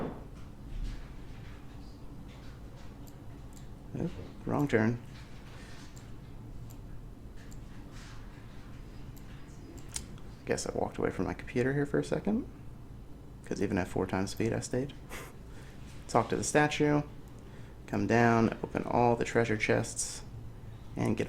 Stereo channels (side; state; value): both; identical; correlation 1.00